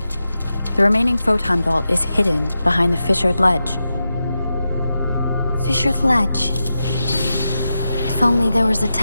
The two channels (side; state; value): both; inverted; correlation -0.90